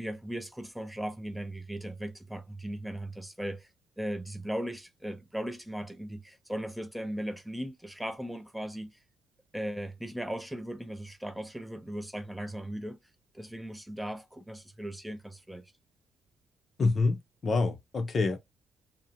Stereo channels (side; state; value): both; normal; correlation 0.93